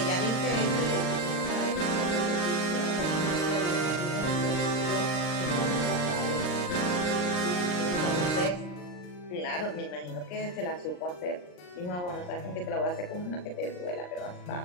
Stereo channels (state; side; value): late; right; 39 ms